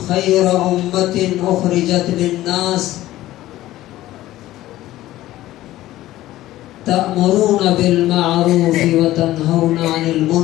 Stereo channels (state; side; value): quieter; right; 15.4 dB